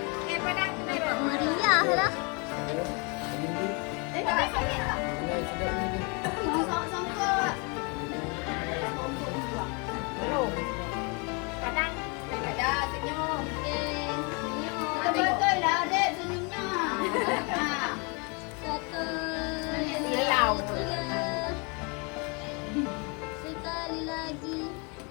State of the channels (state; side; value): quieter; right; 32.4 dB